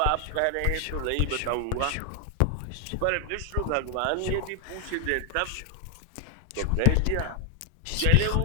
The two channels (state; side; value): different; both; correlation 0.00